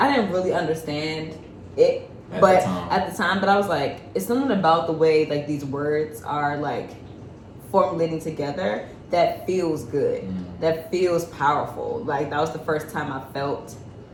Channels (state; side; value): identical; both; correlation 1.00